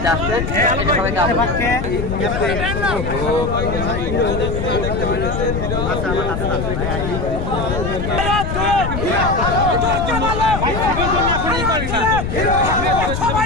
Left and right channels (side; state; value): left; noise; rumble, 3 dB below the sound